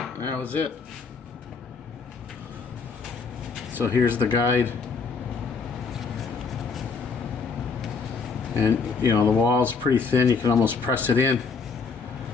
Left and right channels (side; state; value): right; quieter; 5.0 dB